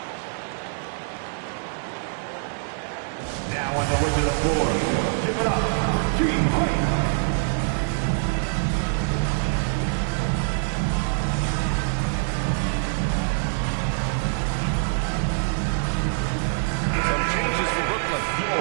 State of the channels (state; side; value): silent; left; digital silence